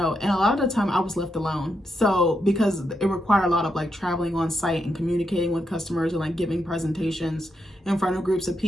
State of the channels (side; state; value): both; normal; correlation 0.83